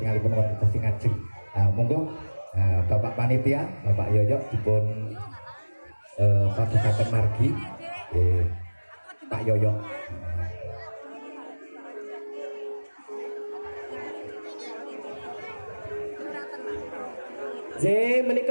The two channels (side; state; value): both; inverted; correlation -1.00